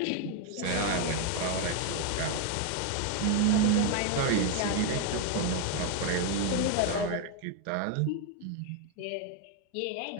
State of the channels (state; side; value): different; both; correlation 0.01